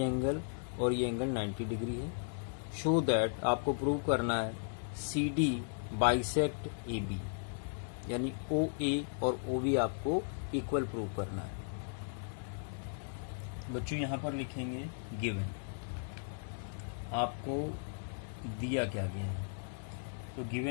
एंगल और ये एंगल 90 डिग्री है। शो दैट आपको प्रूव करना है CD बाइसेक्ट AB, यानी OA और OB आपको इक्वल प्रूव करना है। बच्चों यहाँ पर लिखेंगे गिवन, आपको दिया क्या गया है। तो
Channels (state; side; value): silent; right; digital silence